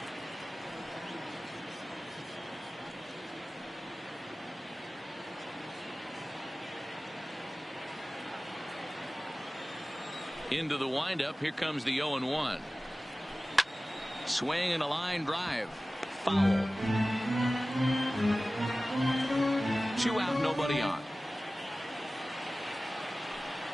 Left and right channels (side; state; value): both; normal; correlation 0.97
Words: Into the windup. Here comes the 0-1. Swing and a line drive. Foul. 2 out, nobody on.